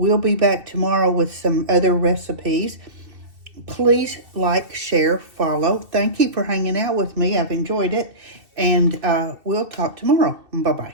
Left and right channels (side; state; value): left; late; 2.7 ms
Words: be back tomorrow with some other recipes. Please like, share, follow. Thank you for hanging out with me. I've enjoyed it. And we'll talk tomorrow. Bye-bye.